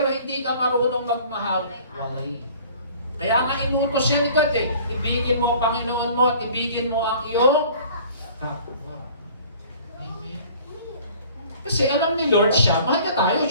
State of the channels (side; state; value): both; inverted; correlation -0.49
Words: hindi ka marunong magmahal, walay. Kaya nga inutos siya ni God eh, ibigin mo ang Panginoon mo at ibigin mo ang iyong kapwa. Amen. Kasi alam ni Lord siya, mahal niya tayo,